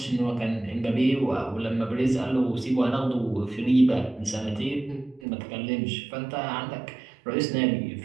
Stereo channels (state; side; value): drops out; left; at 5.2 s